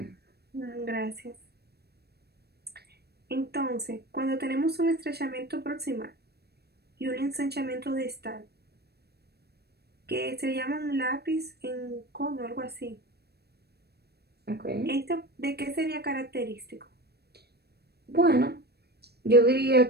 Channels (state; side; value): late; left; 0.47 ms